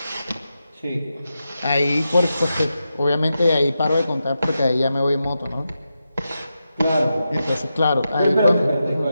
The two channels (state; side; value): inverted; both; correlation -0.89